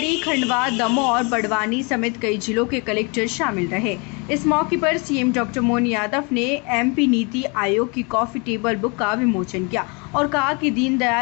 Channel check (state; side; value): quieter; right; 31.5 dB